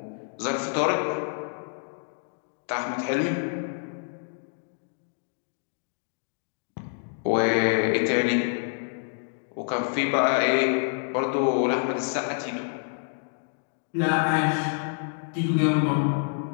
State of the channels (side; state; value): right; silent; 60 dB below the other